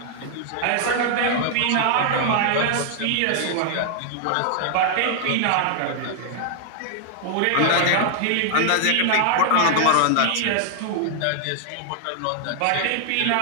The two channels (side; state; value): both; different; correlation 0.00